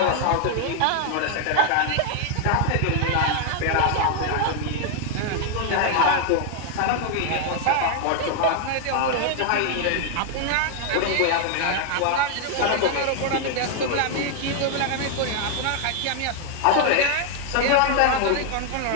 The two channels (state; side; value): different; both; correlation 0.00